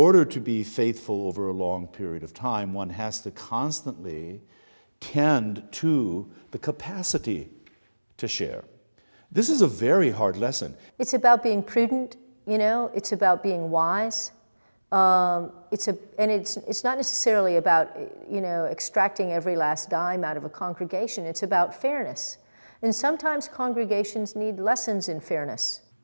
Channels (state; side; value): inverted; both; correlation -1.00